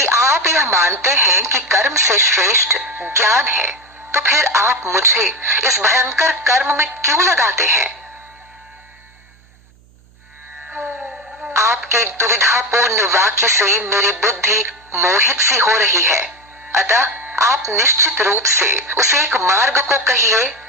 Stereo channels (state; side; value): noise; right; hum, 30 dB below the sound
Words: आप यह मानते हैं कि कर्म से श्रेष्ठ ज्ञान है, तो फिर आप मुझे इस भयंकर कर्म में क्यों लगाते हैं? आपके दुविधापूर्ण वाक्य से मेरी बुद्धि मोहित सी हो रही है, अतः आप निश्चित रूप से उस एक मार्ग को कहिए